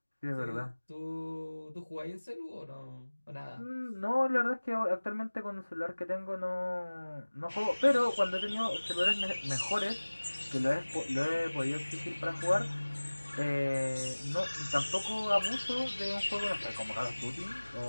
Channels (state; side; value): inverted; both; correlation -1.00